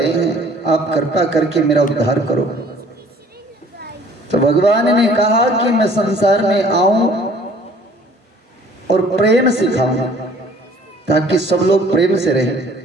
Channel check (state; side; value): normal; both; correlation 0.54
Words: हैं, आप कृपा करके मेरा उद्धार करो। तो भगवान ने कहा कि मैं संसार में आऊं और प्रेम सिखाऊं ताकि सब लोग प्रेम से रहें।